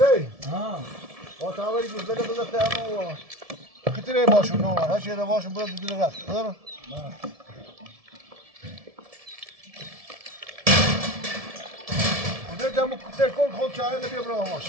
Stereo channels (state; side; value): late; left; 1.7 ms